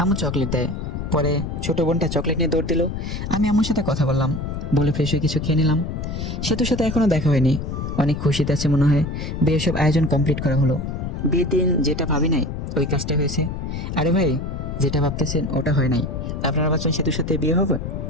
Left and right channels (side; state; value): left; noise; rumble, 5 dB below the sound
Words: আম্মু চকলেট দেয়। পরে ছোট বোনটা চকলেট নিয়ে দৌড় দিল। আমি আম্মুর সাথে কথা বললাম, বলে ফ্রেশ হয়ে কিছু খেয়ে নিলাম। সেতুর সাথে এখনো দেখা হয়নি, অনেক খুশিতে আছে মনে হয়। বিয়ের সব আয়োজন কমপ্লিট করা হলো। বিয়ের দিন যেটা ভাবি নাই ওই কাজটা হয়েছে। আরে ভাই, যেটা ভাবতেছেন ওটা হয় নাই। আপনারা ভাবছেন সেতুর সাথে বিয়ে হবে,